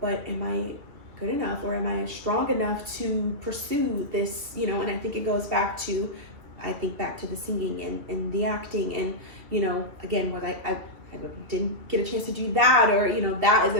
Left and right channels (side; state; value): left; late; 2.9 ms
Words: am I good enough, or am I strong enough to pursue this, and I think it goes back to, the singing and the acting, and, again, what I didn't get a chance to do that, or, that is